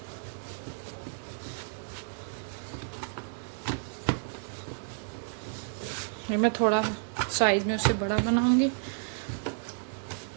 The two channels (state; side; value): silent; left; digital silence